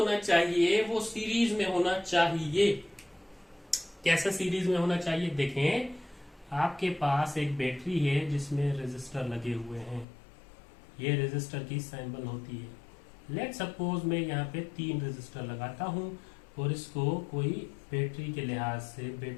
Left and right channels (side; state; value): right; drops out; at 10.1 s